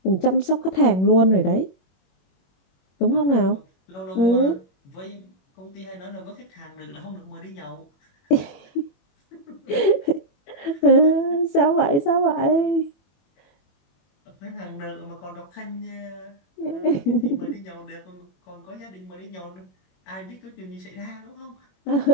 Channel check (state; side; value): late; right; 21 ms